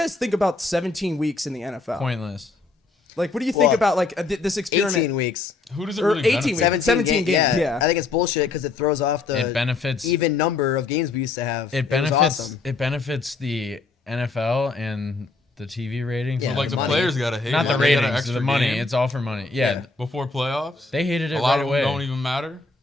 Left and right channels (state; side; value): quieter; right; 3.9 dB